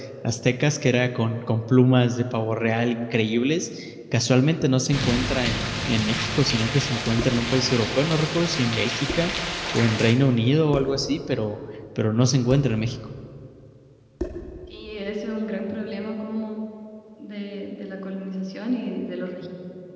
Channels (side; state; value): both; identical; correlation 1.00